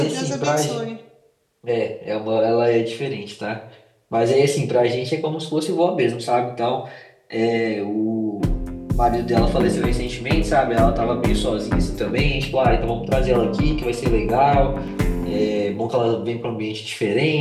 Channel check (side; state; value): both; identical; correlation 1.00